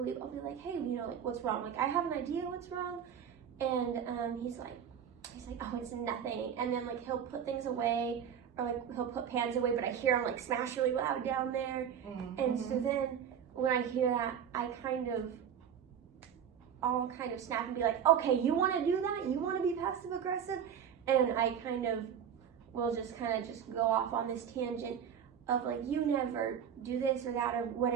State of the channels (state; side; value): quieter; left; 8.3 dB